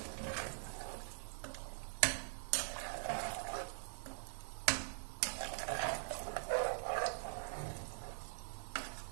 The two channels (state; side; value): silent; left; digital silence